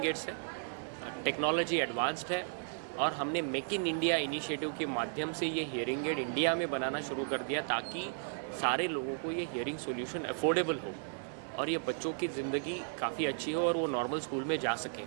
एड्स है, टेक्नोलॉजी एडवांस्ड है, और हमने मेक इन इंडिया इनिशिएटिव के माध्यम से ये हियरिंग एड इंडिया में बनाना शुरू कर दिया ताकि सारे लोगों को ये हियरिंग सॉल्यूशन अफोर्डेबल हो और ये बच्चों की ज़िंदगी काफ़ी अच्छी हो और वो नॉर्मल स्कूल में जा सकें।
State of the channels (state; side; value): silent; left; digital silence